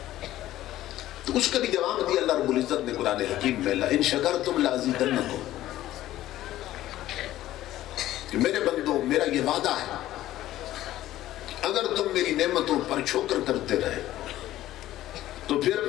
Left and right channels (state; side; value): quieter; right; 14.3 dB